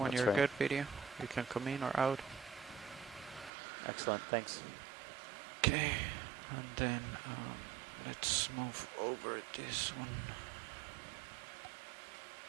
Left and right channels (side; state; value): left; drops out; at 3.5 s